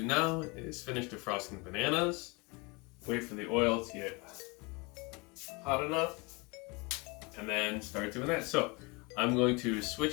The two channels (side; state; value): right; quieter; 28.2 dB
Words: now is finish defrosting the bananas, wait for the oil to get hot enough, and then start doing that. So, I'm going to